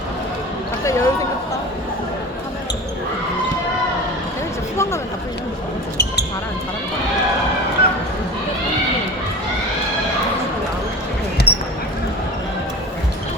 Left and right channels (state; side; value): normal; both; correlation 0.33